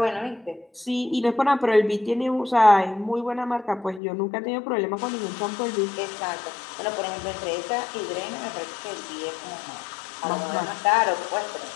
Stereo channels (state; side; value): drops out; right; at 4.0 s